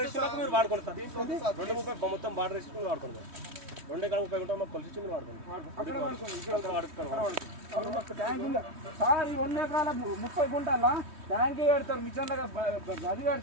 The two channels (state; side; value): late; left; 3.2 ms